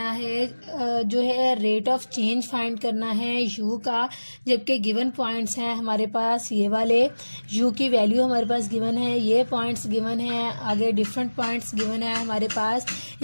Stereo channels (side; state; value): both; inverted; correlation -1.00